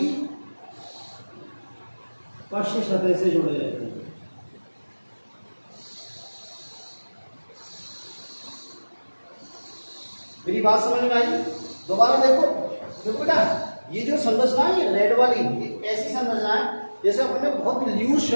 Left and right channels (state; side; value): inverted; both; correlation -1.00